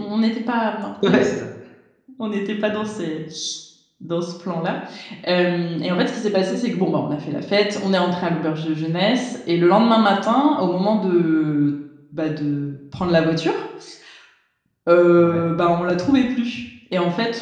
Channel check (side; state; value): both; identical; correlation 1.00